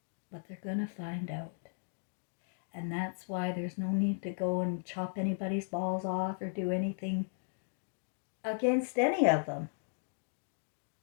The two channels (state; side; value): silent; right; digital silence